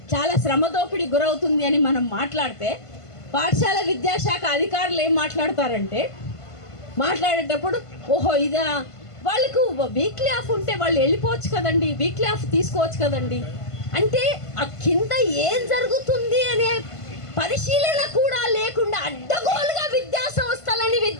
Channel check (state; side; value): late; right; 1.5 ms